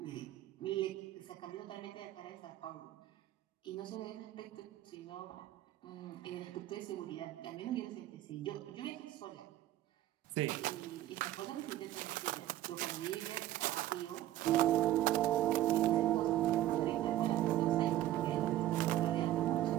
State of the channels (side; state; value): left; quieter; 14.0 dB